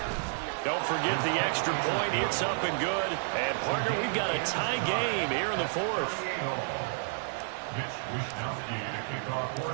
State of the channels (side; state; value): left; silent; digital silence